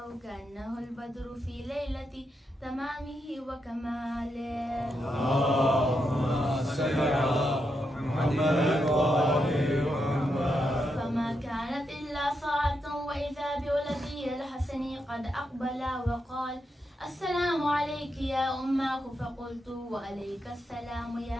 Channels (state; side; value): normal; both; correlation 0.83